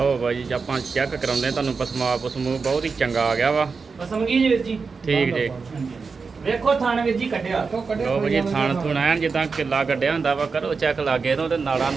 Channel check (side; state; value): left; quieter; 4.9 dB